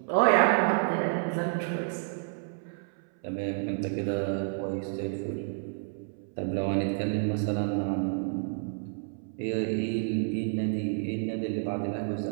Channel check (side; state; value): left; silent; 58 dB below the other